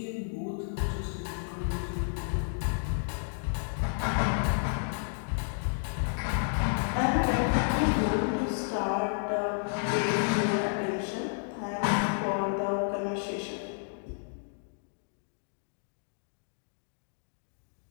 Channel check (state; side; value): silent; right; digital silence